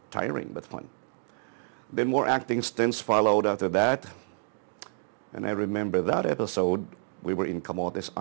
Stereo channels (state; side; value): silent; left; digital silence